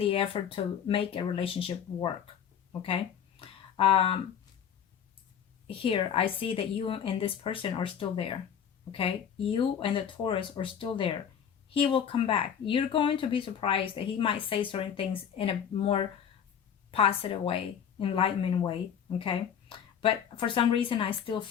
effort to make a relationship work. Okay? Here I see that you and this person are still there. Okay, you and the Taurus are still there. He will come back. You're going to be surprised that he might say certain things in a more positive way, enlightenment way. Okay, but for some reason I still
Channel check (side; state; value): right; quieter; 8.3 dB